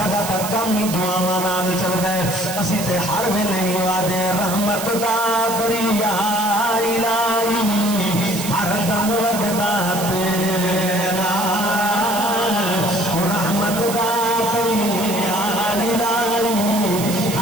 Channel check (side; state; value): right; noise; hiss, 7 dB below the sound